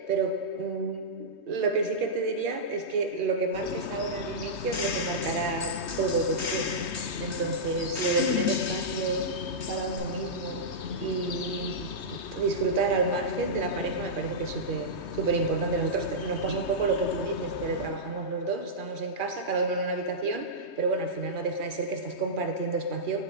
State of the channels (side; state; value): right; late; 3.2 ms